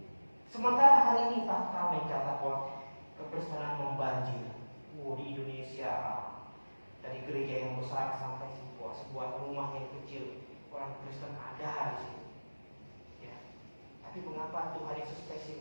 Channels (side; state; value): both; inverted; correlation -1.00